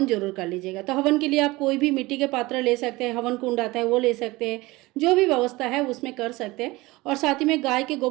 जरूर कर लीजिएगा। तो हवन के लिए आप कोई भी मिट्टी के पात्र ले सकते हैं, हवन कुंड आता है वो ले सकते हैं, जो भी व्यवस्था है उसमें कर सकते हैं। और साथ ही में गाय के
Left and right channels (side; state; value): left; quieter; 21.1 dB